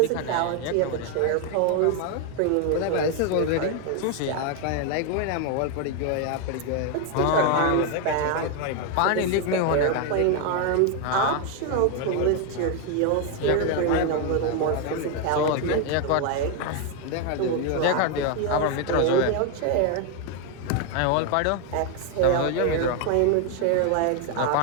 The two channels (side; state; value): both; different; correlation 0.01